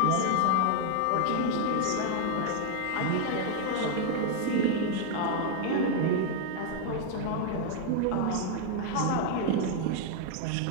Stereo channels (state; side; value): different; both; correlation 0.00